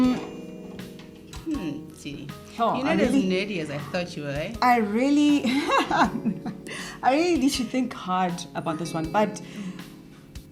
Tini, Oh, you're not as nerdy as I thought you were, eh? I really need to think hard about this one, but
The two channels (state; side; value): identical; both; correlation 1.00